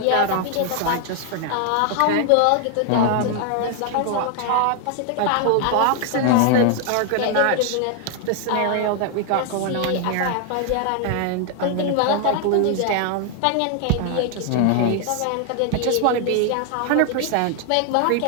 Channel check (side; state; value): both; different; correlation 0.00